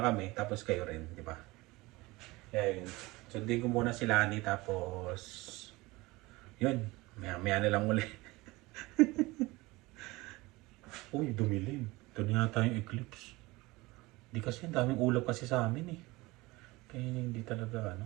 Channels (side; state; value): left; quieter; 21.6 dB